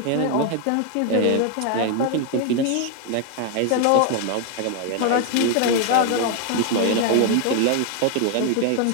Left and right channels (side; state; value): both; different; correlation 0.01